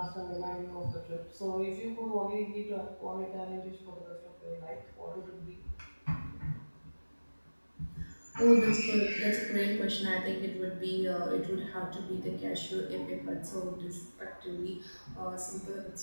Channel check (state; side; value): inverted; both; correlation -1.00